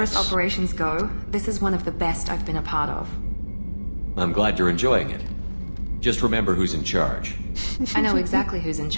operations go, this is one of the best I've been a part of. I'm glad you're enjoying it. Just remember who's in charge. I know exactly who's in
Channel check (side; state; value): both; inverted; correlation -1.00